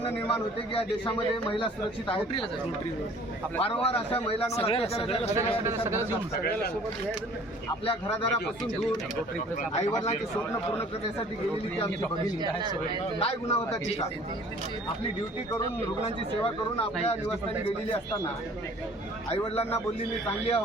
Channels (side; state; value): both; normal; correlation 0.52